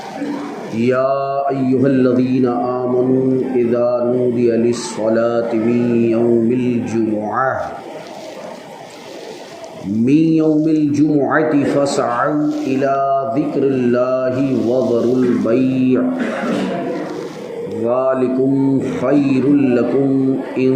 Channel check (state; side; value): identical; both; correlation 1.00